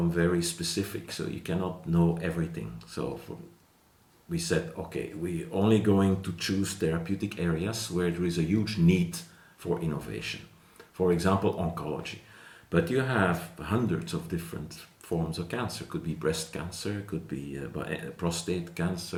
very specific, so you cannot know everything. So we said, okay, we're only going to choose therapeutic areas where there is a huge need for innovation. For example, oncology. But you have hundreds of different forms of cancer. Could be breast cancer, could be prostate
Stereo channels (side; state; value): both; identical; correlation 1.00